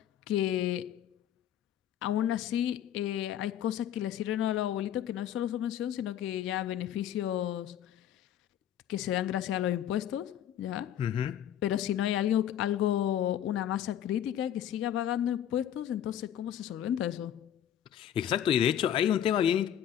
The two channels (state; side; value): quieter; right; 10.6 dB